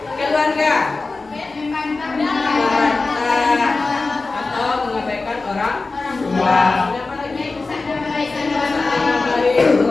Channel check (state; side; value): quieter; right; 3.7 dB